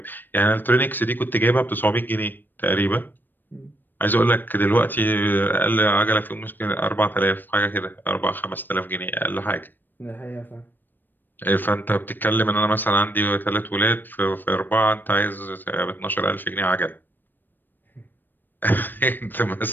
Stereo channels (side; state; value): right; late; 0.092 ms